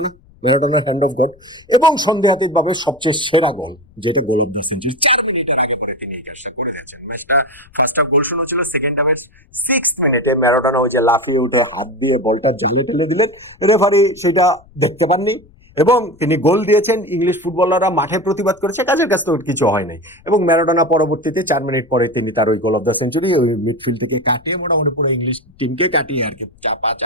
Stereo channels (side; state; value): left; noise; rumble, 28 dB below the sound